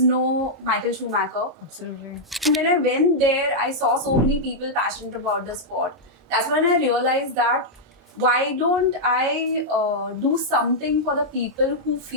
know Michael Schumacher. Absolutely. And when I went there, I saw so many people passionate about the sport. That's when I realized that why don't I do something for the people who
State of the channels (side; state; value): both; normal; correlation -0.06